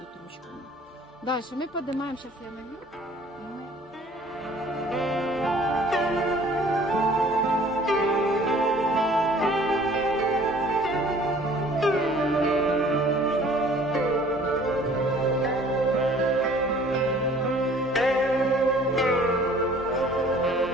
ручками. Дальше мы поднимаем, сейчас я налью.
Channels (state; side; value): normal; both; correlation 0.53